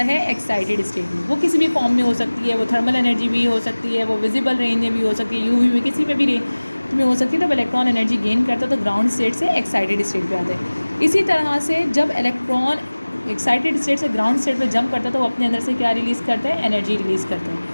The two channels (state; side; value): inverted; both; correlation -1.00